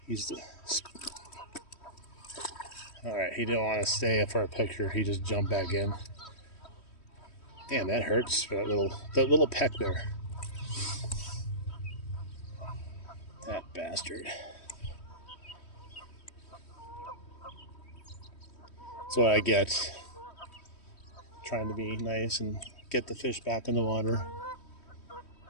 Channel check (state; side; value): late; right; 3.1 ms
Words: He's the... Alright, he didn't want to stay for a picture. He just jumped back in. Damn, that hurts for that little peck there. That bastard. That's what I get. Trying to be nice and get the fish back in the water.